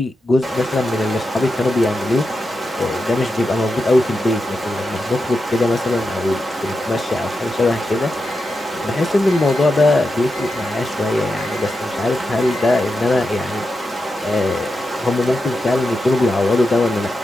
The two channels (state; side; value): normal; both; correlation 0.88